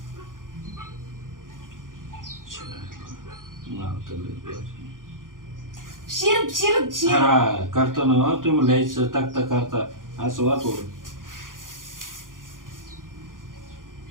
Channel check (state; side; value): late; left; 0.89 ms